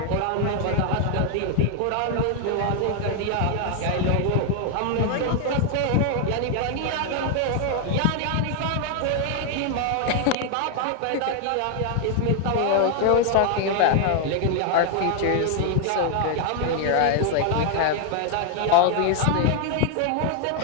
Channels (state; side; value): different; both; correlation 0.00